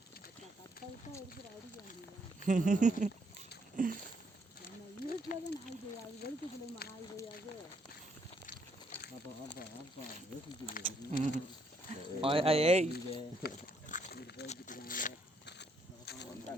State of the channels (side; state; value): both; normal; correlation 0.72